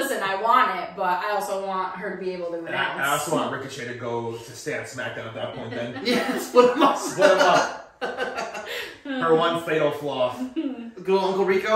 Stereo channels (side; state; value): both; identical; correlation 1.00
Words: I want it, but I also want her to be able to And announce. I also want Ricochet to go to stay on SmackDown at that point then. Yeah, split them up. Split them up. Her one fatal flaw. Good old Uncle